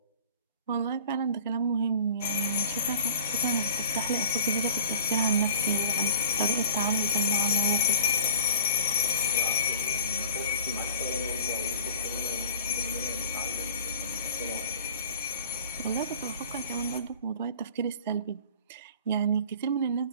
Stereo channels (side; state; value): both; inverted; correlation -0.43